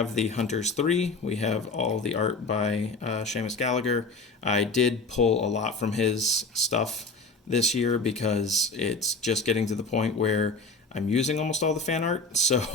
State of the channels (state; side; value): quieter; right; 3.5 dB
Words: the Hunters 3. We have all the art by Seamus Gallagher. I did pull a lot from his stuff this year because it's just getting to the point where I'm using almost all the fan art.